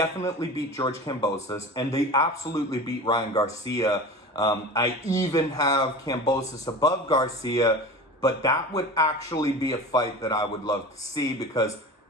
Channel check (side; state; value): both; normal; correlation 0.34